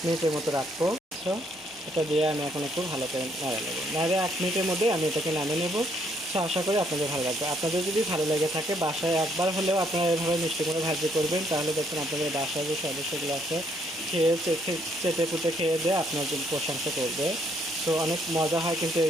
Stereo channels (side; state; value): both; normal; correlation 0.70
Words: মিনিটের মতো রাখবো। তো এটা দিয়ে আমি এখন একটু ভালো করে নাড়া নেবো, নাড়ে 1 মিনিটের মধ্যে আমি এটাকে নামিয়ে নেবো। তো আশা করি আপনাদের ভালো লাগবে। আপনাদের যদি ভালো লেগে থাকে, বাসায় একবার হলেও আপনারা এভাবে মিষ্টি কুমড়ো ভাজি করবেন, তাহলে দেখুন আপনাদের বাসায় যে সদস্যগুলো আছে খেয়ে চেটে পুটে খেয়ে দিয়ে আপনার প্রশংসা করবে। তো অনেক মজা হয় কিন্তু